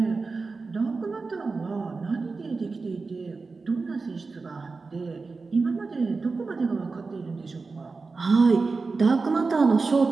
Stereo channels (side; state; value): left; quieter; 4.1 dB